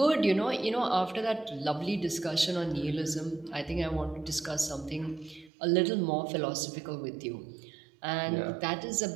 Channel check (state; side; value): drops out; left; at 5.5 s